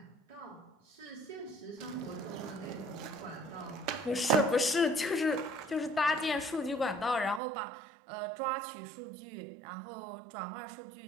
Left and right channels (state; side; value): drops out; left; at 7.4 s